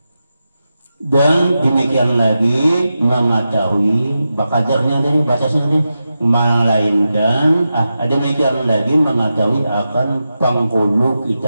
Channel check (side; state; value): both; inverted; correlation -0.90